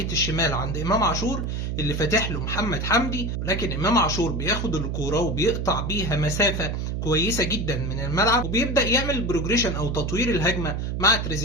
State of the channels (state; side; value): noise; right; hum, 2 dB below the sound